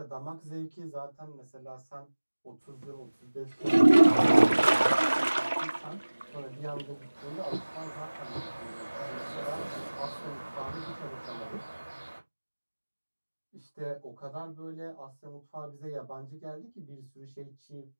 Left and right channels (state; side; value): inverted; both; correlation -1.00